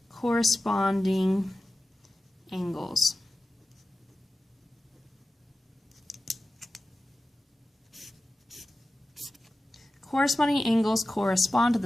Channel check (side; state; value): both; normal; correlation 0.95